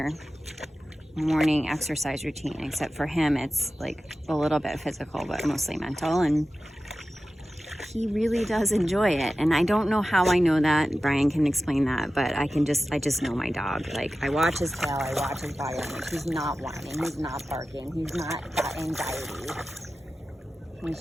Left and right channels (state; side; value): normal; both; correlation 0.94